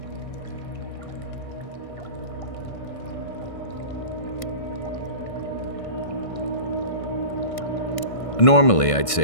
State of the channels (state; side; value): late; right; 1.6 ms